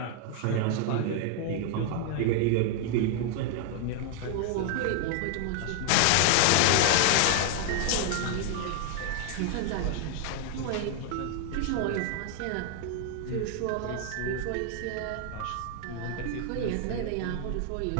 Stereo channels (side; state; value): both; different; correlation 0.00